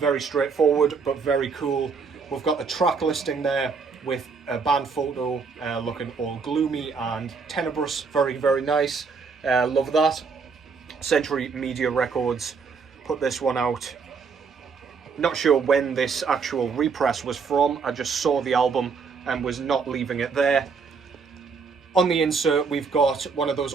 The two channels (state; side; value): quieter; left; 5.2 dB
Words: straightforward, but very cool. We've got the track listing there with a band photo looking all gloomy and tenebrous. Very, very nice. Love that. Century Media Records put this one out. Not sure when this actual repress was from. I just saw the album and was not leaving it there. On the insert, we've got one of those